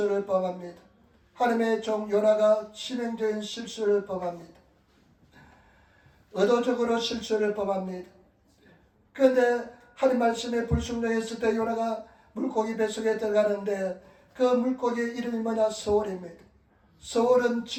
범합니다. 하나님의 종 요나가 치명적인 실수를 범합니다. 의도적으로 실수를 범합니다. 그런데 하나님 말씀에 불순종했을 때 요나가 물고기 뱃속에 들어가는데 그 물고기의 이름이 뭐냐? 서울입니다. 서울은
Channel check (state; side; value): identical; both; correlation 1.00